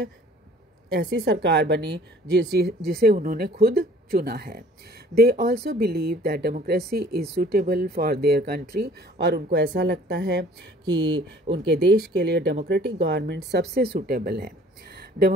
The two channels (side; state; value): both; normal; correlation 0.53